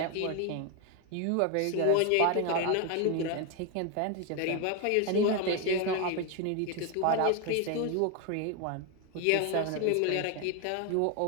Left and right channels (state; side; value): different; both; correlation 0.02